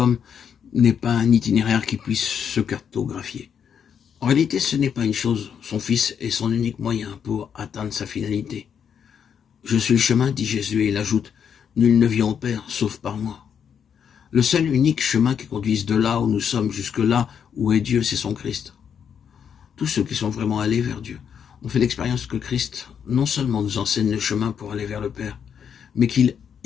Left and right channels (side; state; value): right; quieter; 7.7 dB